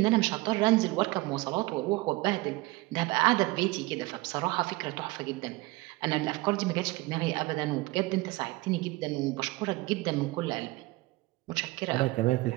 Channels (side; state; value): left; quieter; 21.5 dB